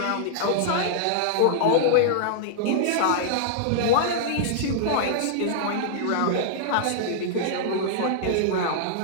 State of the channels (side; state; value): both; different; correlation -0.01